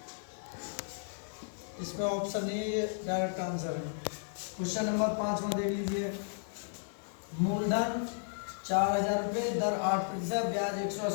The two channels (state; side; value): silent; right; 55 dB below the other